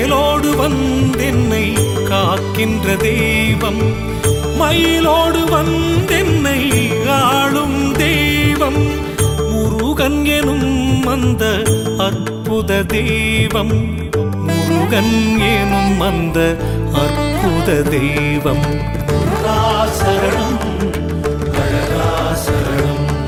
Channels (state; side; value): identical; both; correlation 1.00